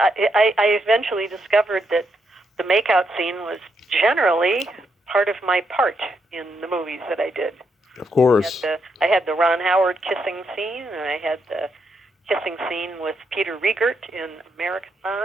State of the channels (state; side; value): normal; both; correlation 0.79